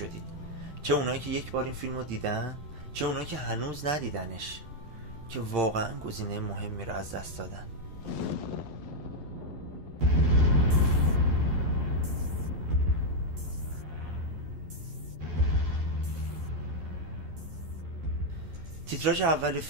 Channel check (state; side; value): late; left; 11 ms